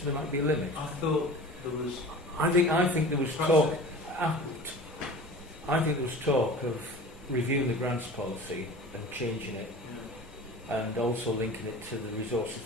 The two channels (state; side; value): normal; both; correlation 0.38